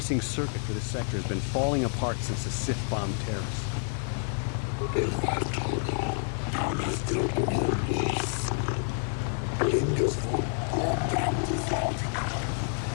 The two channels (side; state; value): right; silent; 57 dB below the other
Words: circuit for this sector has been falling apart since the Sith bombed Terrace. These